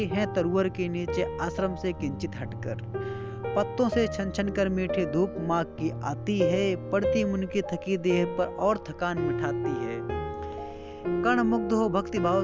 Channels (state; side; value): identical; both; correlation 1.00